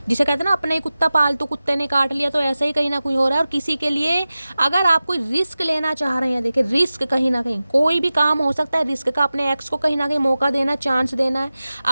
जिसे कहते हैं ना, अपने ही कुत्ता पालतू कुत्ते ने काट लिया, तो ऐसे ही कहीं ना कोई हो रहा है। और किसी के लिए अगर आप कोई रिस्क लेना चाह रहे हैं, देखिए रिस्क कहीं ना कहीं कोई भी काम हो सकता है रिस्क का, अपने एक्स को कहीं ना कहीं मौका देना, चांस देना है।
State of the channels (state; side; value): inverted; both; correlation -0.96